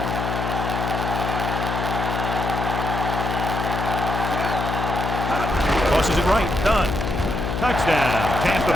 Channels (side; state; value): left; noise; hum, 2 dB below the sound